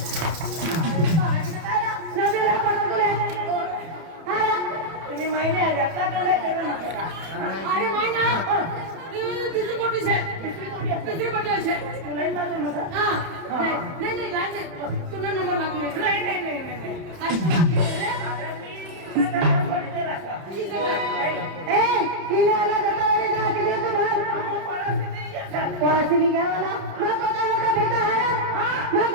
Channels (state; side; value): late; left; 31 ms